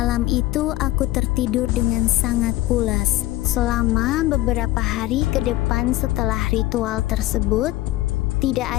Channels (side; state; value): right; quieter; 16.8 dB